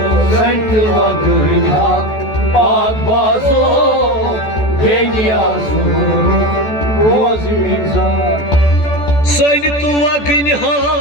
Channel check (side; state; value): right; late; 14 ms